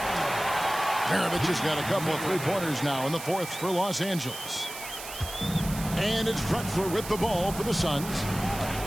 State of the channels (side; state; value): right; noise; hiss, 11 dB below the sound